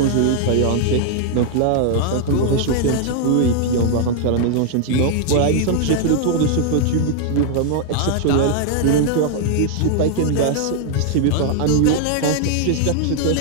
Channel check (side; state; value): both; different; correlation 0.00